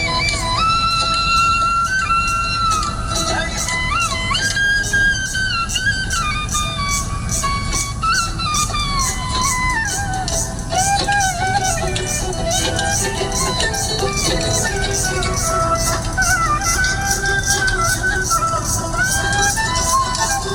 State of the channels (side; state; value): both; identical; correlation 1.00